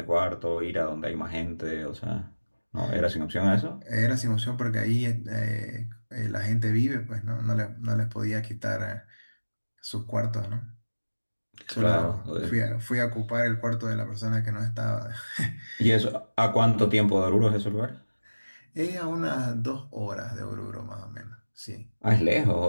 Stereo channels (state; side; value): inverted; both; correlation -1.00